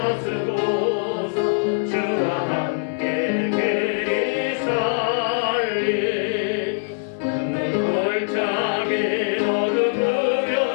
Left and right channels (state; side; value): silent; right; digital silence